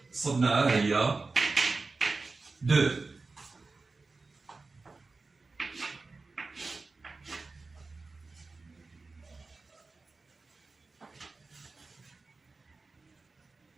صبناها هي 2.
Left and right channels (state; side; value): quieter; left; 3.8 dB